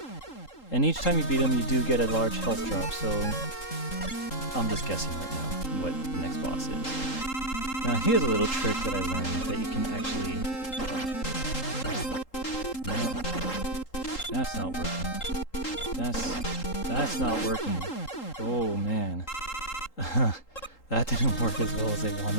And each time you beat him, you do get a large health drop, so I'm just guessing right now what the next boss is. Now, here's a little trick that I learned that you can actually... No, that's not working. That's not working. Oh, man. That didn't work as well as I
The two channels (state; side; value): late; right; 3.8 ms